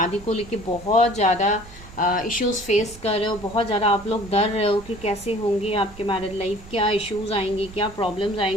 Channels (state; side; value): noise; right; rumble, 18 dB below the sound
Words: को लेके बहुत ज़्यादा इश्यूज फेस कर रहे हो, बहुत ज़्यादा आप लोग डर रहे हो कि कैसे होंगे आपके मैरिड लाइफ, क्या इश्यूज आएंगे, क्या प्रॉब्लम्स